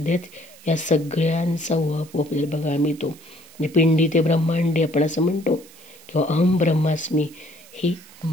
या सगळ्यांचा उहापोह आपल्याला बघायला मिळतो. म्हणजे पिंडी ते ब्रह्मांडी आपण असं म्हणतो, किंवा अहम ब्रह्मास्मी, ही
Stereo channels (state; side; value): noise; right; hiss, 23 dB below the sound